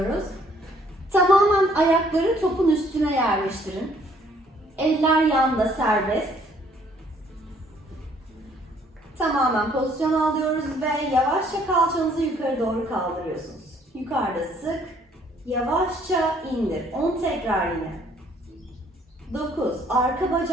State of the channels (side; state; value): both; normal; correlation 0.63